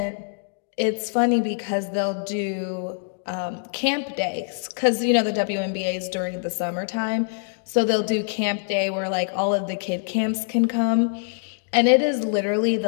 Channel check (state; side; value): silent; right; digital silence